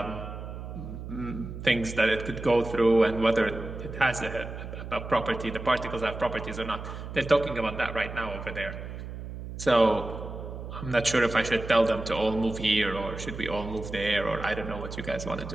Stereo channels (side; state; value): right; noise; hum, 9 dB below the sound